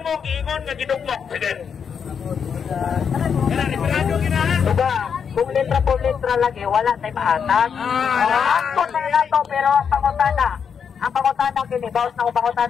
giingon nga gidugmok. Sige. Diba, kung litra po litra lagi, wala tayo maatag. Angkot na nato, pero ang pangutana kini, bawas na kung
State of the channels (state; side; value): quieter; right; 6.9 dB